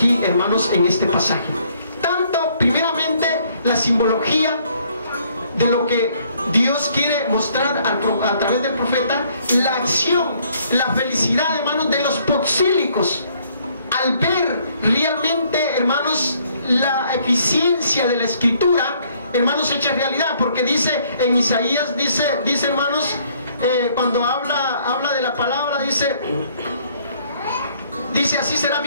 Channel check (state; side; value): inverted; both; correlation -0.65